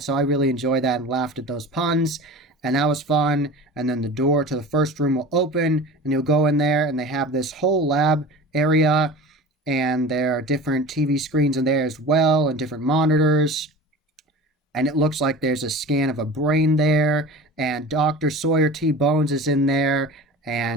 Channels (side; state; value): both; normal; correlation 0.36